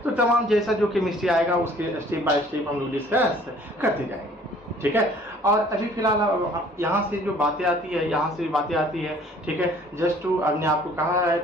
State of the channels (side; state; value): both; normal; correlation 0.55